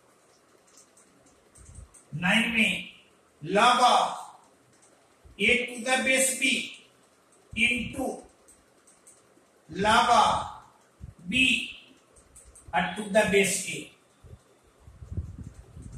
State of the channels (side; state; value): both; identical; correlation 1.00